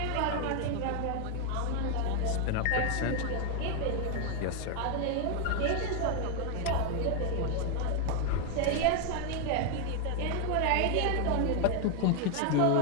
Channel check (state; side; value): different; both; correlation 0.01